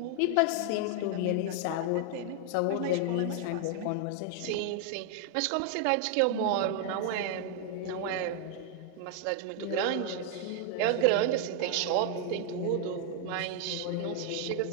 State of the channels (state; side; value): different; both; correlation 0.00